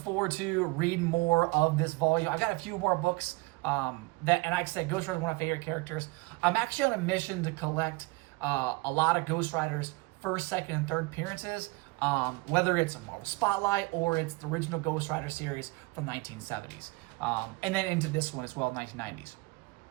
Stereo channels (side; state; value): left; quieter; 25.4 dB